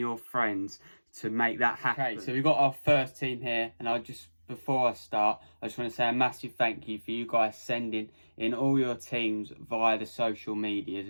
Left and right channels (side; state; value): both; inverted; correlation -1.00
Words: friends to make that happen. Okay, so we've got our first team here, and before I start, I just want to say a massive thank you for you guys sending in all your teams via the social medias,